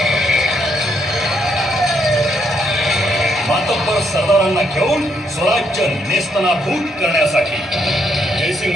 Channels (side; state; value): both; normal; correlation 0.74